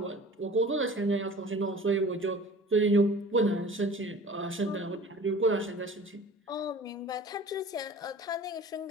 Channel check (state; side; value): normal; both; correlation 0.43